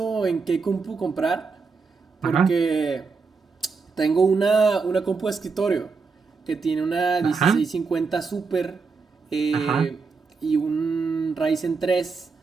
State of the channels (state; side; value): quieter; left; 4.7 dB